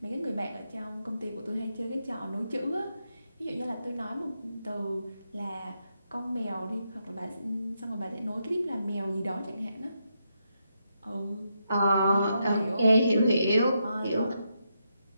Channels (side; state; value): both; inverted; correlation -0.82